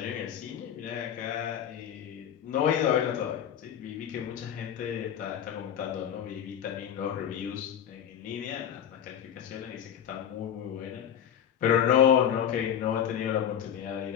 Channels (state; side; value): quieter; right; 9.2 dB